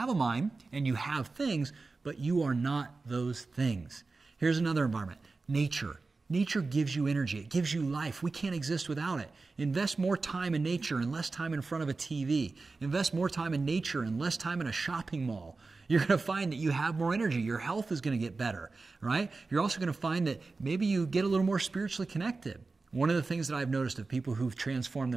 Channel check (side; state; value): left; quieter; 3.9 dB